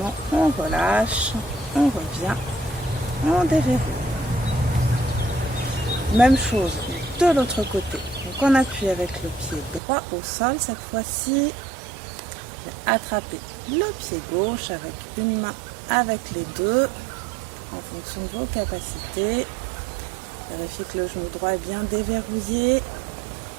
on relâche, on revient, on déverrouille. Même chose de l'autre côté. Donc on appuie avec le pied droit au sol. Cette fois-ci, attrapez le pied gauche avec une main, avec les deux, en fonction de vos capacités. Vérifiez que le genou droit est bien déverrouillé.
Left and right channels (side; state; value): left; drops out; at 9.8 s